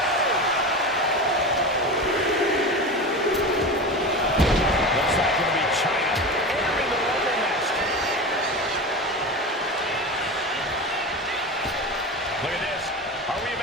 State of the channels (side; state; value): both; normal; correlation 0.27